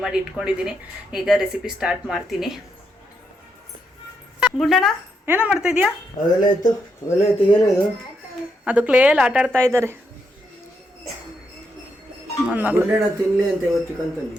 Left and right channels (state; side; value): normal; both; correlation 0.80